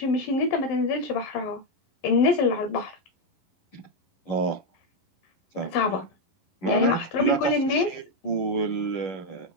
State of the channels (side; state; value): right; late; 11 ms